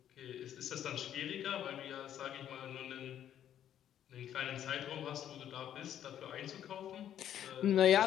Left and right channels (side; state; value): right; quieter; 10.5 dB